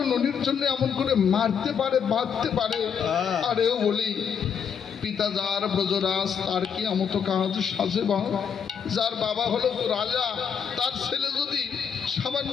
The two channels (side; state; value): right; quieter; 7.3 dB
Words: ননির জন্য এমন করে মারতে পারে, বাঁধতে পারে। আরেও বলি, পিতা যার ব্রজরাজ, তার কি আমতো কাজ সাজে বা? যার বাবা হলো রাজা, তার ছেলে যদি